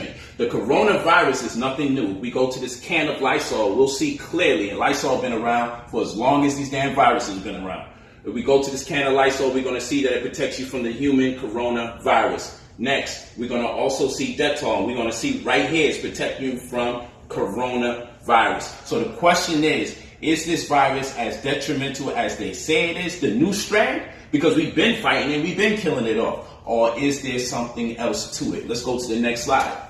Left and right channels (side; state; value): both; identical; correlation 1.00